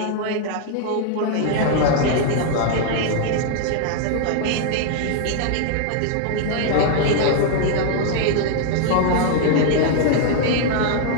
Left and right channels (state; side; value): different; both; correlation 0.00